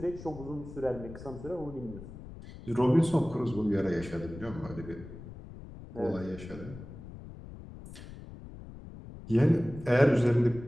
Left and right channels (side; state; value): left; noise; rumble, 14 dB below the sound